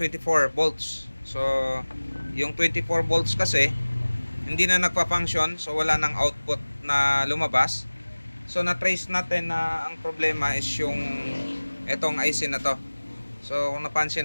volts. So yung 24 volts kasi hindi na nagpa-function, so wala nang output na lumabas. So na-trace natin na ang problema is yung etong IC na to. So kung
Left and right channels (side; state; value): both; inverted; correlation -1.00